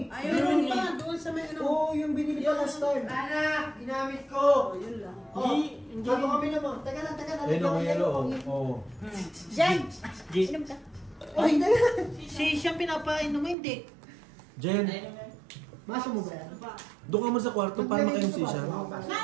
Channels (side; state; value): left; drops out; at 13.6 s